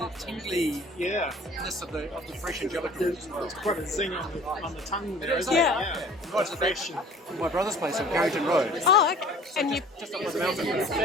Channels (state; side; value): normal; both; correlation 0.48